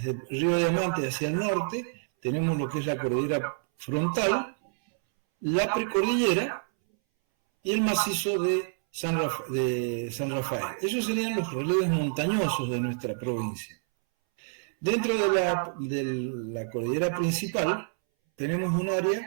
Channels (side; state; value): left; silent; 59 dB below the other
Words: el río Diamante hacia el norte, tenemos lo que es la cordillera frontal, la precordillera y el macizo de San Rafael. Esos serían los relieves montañosos de nuestra provincia. Dentro de la cordillera principal tenemos un